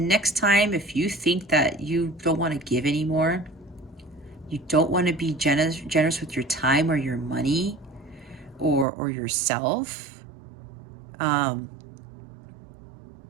time, if you think that you don't want to give anymore, you don't want to be generous with your time or your money or yourself, and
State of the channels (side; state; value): left; drops out; at 8.8 s